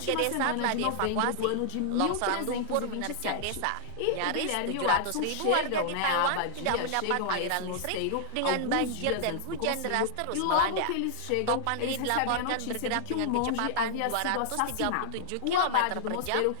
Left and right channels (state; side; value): different; both; correlation -0.01